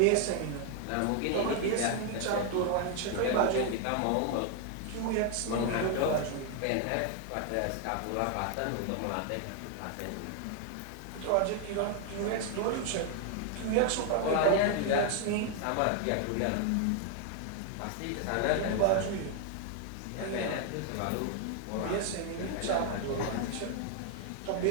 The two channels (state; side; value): different; both; correlation 0.00